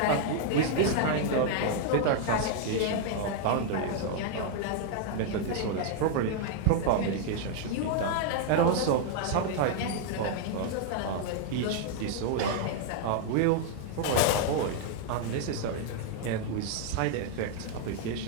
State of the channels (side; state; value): both; different; correlation 0.00